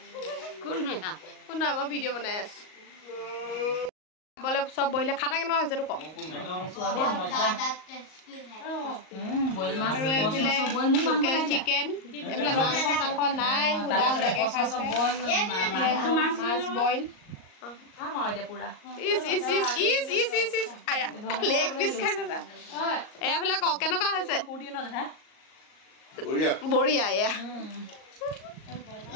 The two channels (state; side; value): late; right; 38 ms